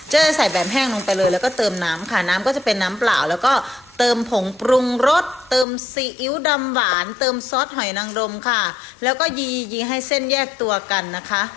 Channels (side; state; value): right; drops out; at 5.7 s